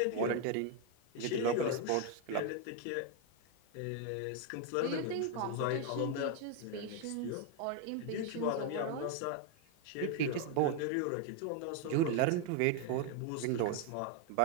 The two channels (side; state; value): both; different; correlation 0.01